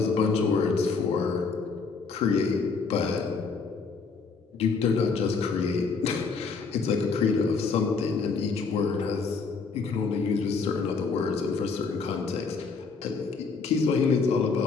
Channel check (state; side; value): quieter; right; 4.8 dB